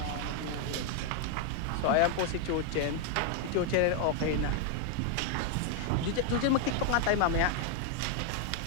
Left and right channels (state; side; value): different; both; correlation 0.00